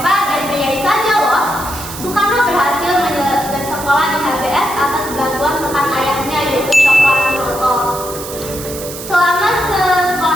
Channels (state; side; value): noise; right; hiss, 11 dB below the sound